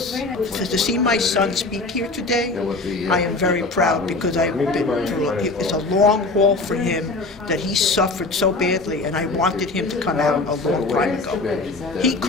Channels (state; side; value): quieter; right; 3.4 dB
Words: To see my son speak here today, I am very proud, because I've been through it's a long haul for him that he suffered so badly, and I wanted him to come out a long time ago. He